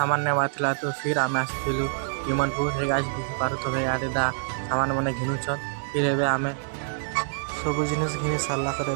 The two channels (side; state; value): left; silent; 61 dB below the other